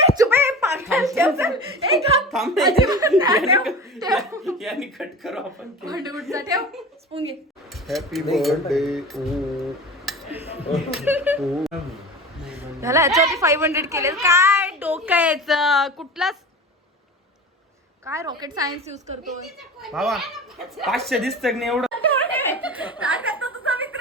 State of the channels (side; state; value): both; normal; correlation 0.33